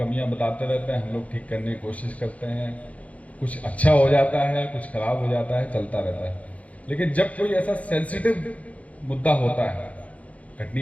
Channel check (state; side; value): late; right; 0.067 ms